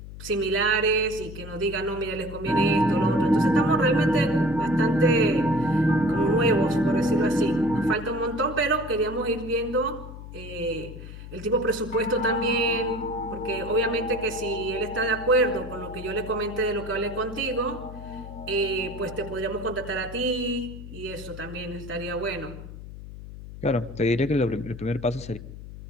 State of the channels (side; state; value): left; noise; hum, 13 dB below the sound